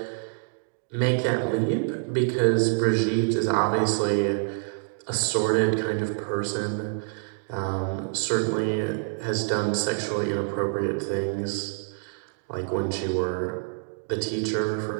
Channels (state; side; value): silent; left; 60 dB below the other